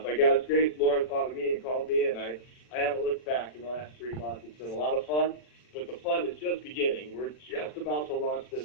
God's grace, Lauren thought of me and called me, and I haven't looked back in the last 3 months. It's been a lot of fun, but the fun is just beginning. We're just about to launch this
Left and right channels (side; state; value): right; late; 40 ms